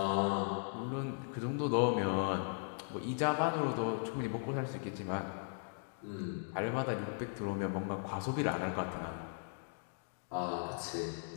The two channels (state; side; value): silent; right; digital silence